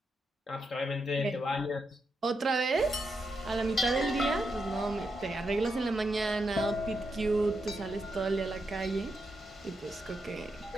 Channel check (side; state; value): both; normal; correlation 0.84